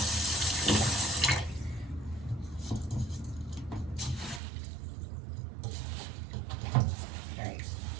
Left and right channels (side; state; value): left; drops out; at 4.4 s